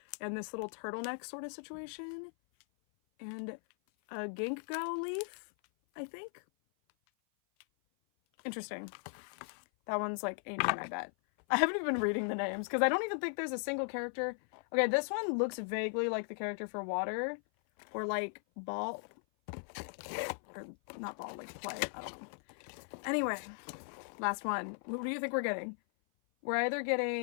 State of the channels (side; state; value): right; silent; 53 dB below the other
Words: and this little turtleneck sort of situation, and a ginkgo leaf, I think. Interesting. That one's like ancient, I bet. I haven't even been reading the names because I don't even think there's a single character. Okay, this one looks vaguely like the character for water, or like ball, or not ball, like play. I don't know. Anyway, last one. Who do you think we're getting? We're either